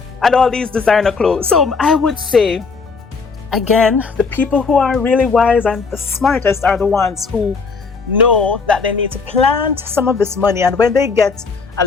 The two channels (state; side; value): quieter; right; 4.8 dB